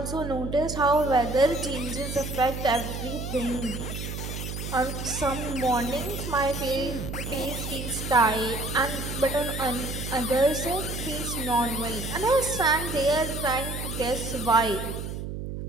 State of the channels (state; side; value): noise; right; hum, 6 dB below the sound